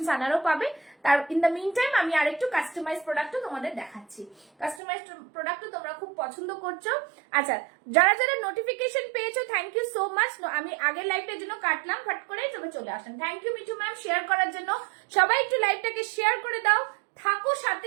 আনারও পাবে। তার ইন দ্য মিন টাইম আমি আরেকটু কাস্টমাইজ প্রোডাক্টও তোমাদের দেখাচ্ছি। কাস্টমাইজ প্রোডাক্টও তোমরা খুব পছন্দ করছো। আচ্ছা, যারা যারা নোটিফিকেশন পেয়েছো থ্যাংক ইউ সো মাচ। আমি আগের লাইভটার জন্য কাটলাম ফট করে, তবে চলে আসেন। Thank you Mithu ma'am share করার জন্য। সবাই একটু লাইভটাকে শেয়ার করে দাও, থাকো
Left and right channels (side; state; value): left; drops out; at 4.8 s